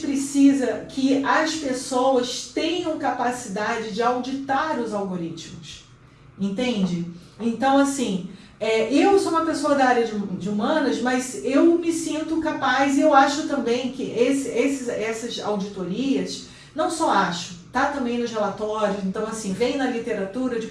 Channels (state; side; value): identical; both; correlation 1.00